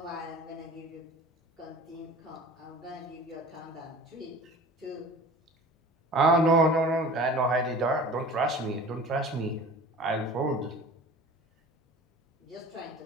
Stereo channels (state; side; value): normal; both; correlation 0.41